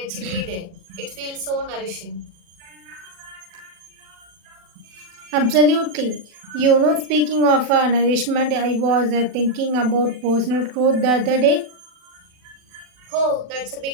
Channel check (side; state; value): left; late; 40 ms